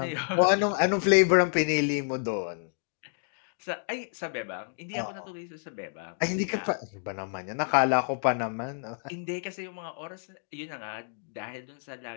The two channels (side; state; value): right; silent; digital silence